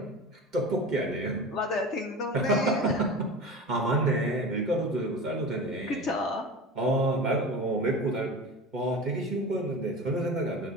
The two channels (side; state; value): both; normal; correlation 0.31